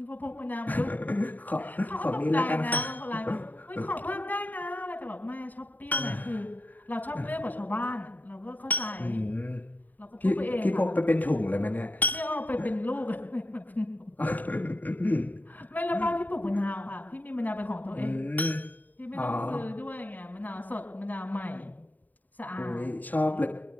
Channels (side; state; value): right; late; 0.083 ms